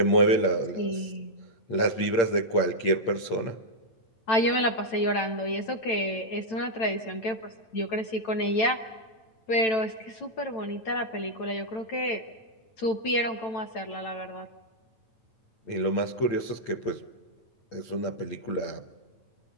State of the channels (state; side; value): late; right; 9.0 ms